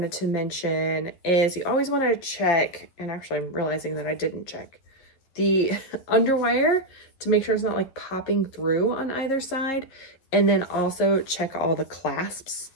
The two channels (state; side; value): late; right; 11 ms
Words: to mention is you always want to check, and actually I'm realizing that I didn't check, the underwire to make sure it's not like popping through on either side. And then also check all the clasps